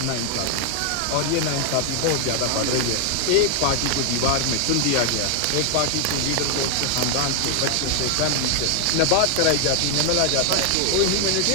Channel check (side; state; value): both; different; correlation 0.00